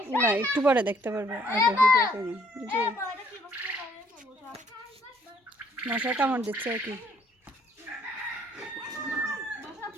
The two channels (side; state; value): both; normal; correlation 0.64